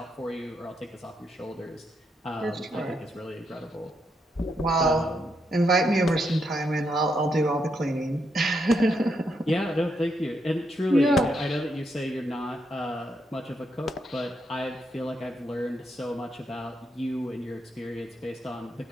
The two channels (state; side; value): normal; both; correlation 0.80